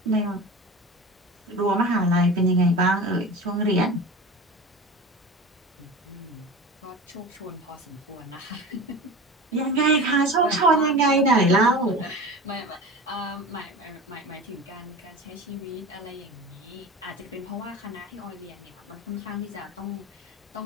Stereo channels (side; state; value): both; normal; correlation 0.32